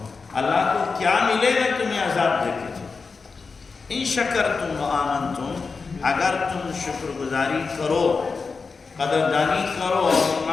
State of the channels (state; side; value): quieter; right; 4.6 dB